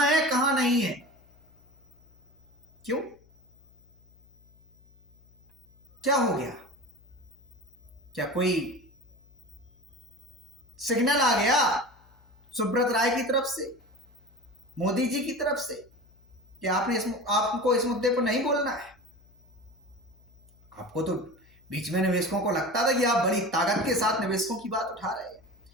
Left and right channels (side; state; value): left; noise; hum, 29 dB below the sound